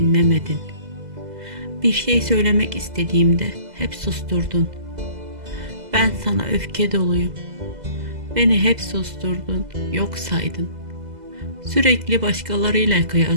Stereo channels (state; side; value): late; left; 2.0 ms